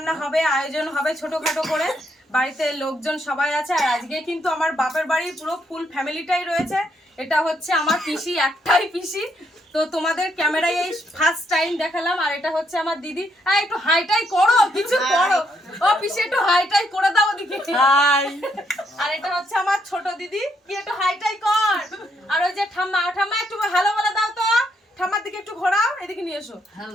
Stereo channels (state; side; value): normal; both; correlation 0.75